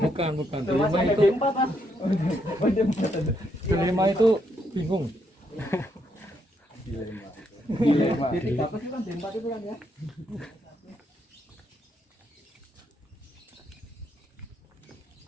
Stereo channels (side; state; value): both; normal; correlation 0.76